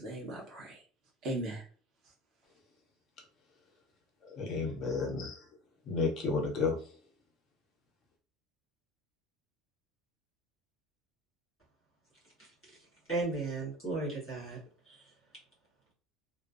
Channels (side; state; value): both; normal; correlation 0.35